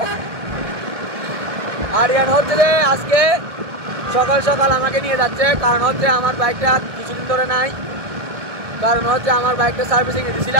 আরিয়ান হচ্ছে যে আজকে সকাল সকাল আমাকে নিয়ে যাচ্ছে, কারণ হচ্ছে আমার বাইকটা কিছুদিন ধরে নাই, কারণ হচ্ছে আমার বাইকটা সার্ভিসিং এ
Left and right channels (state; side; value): late; left; 1.9 ms